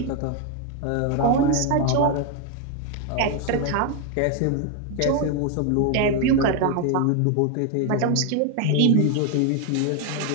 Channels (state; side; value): different; both; correlation 0.01